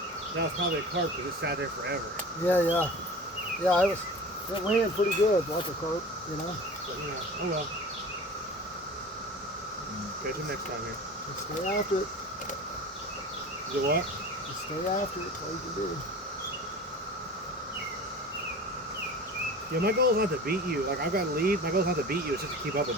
That was probably a carp because it sat there forever. Yeah. Yeah, it ran pretty good, like a carp, you know. But oh well. Catch him next time here. Just stay after it. Is it what? Just stay after it. That's all you can do. Yeah, my goal is not to beat you. Like, I've got to lead. My goal is not to beat you. It's just to keep up with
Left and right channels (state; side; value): normal; both; correlation 0.37